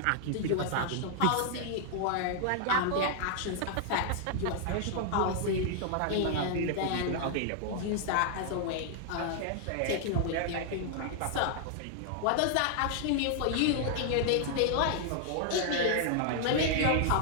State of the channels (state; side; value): different; both; correlation -0.01